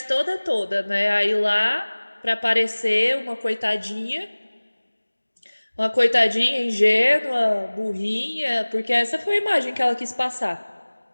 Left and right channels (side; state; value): both; inverted; correlation -1.00